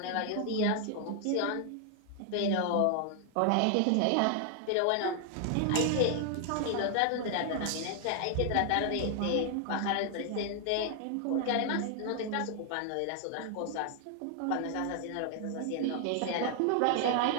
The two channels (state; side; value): different; both; correlation 0.00